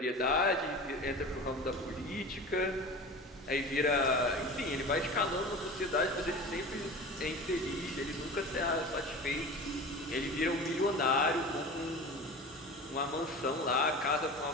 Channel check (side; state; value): both; normal; correlation 0.34